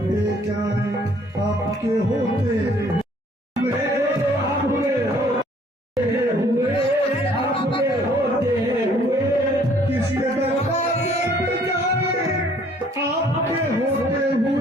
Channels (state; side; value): normal; both; correlation 0.60